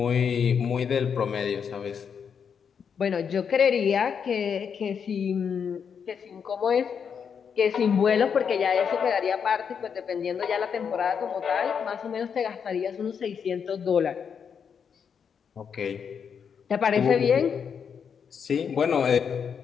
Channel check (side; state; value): right; quieter; 6.9 dB